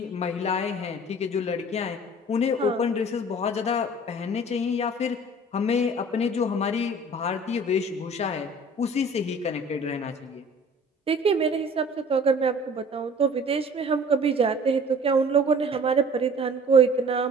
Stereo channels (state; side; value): normal; both; correlation 0.47